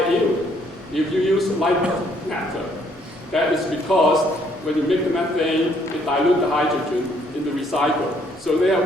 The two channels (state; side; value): normal; both; correlation 0.66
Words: yield if you use light method. That is because when you make the methane, it dilutes the hydrogen in the recycle. So they have